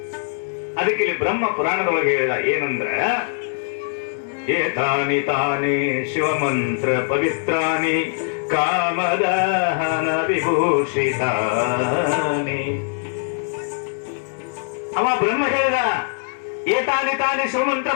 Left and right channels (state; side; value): silent; right; 65 dB below the other